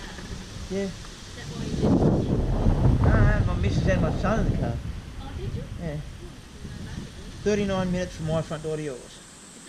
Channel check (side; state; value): both; identical; correlation 1.00